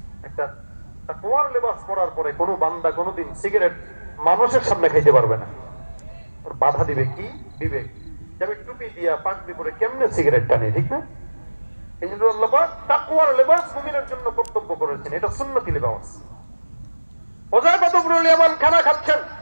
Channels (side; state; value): both; inverted; correlation -1.00